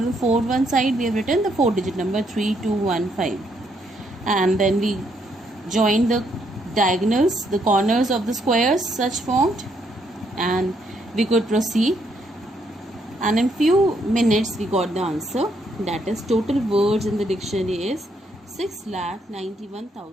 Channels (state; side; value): normal; both; correlation 0.73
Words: the 4 side we have written the 4-digit number 3215. And then we join the diagonals, the corners of the squares such formed, and we could proceed. And in few minutes we got the answer. That is, total words in the dictionary is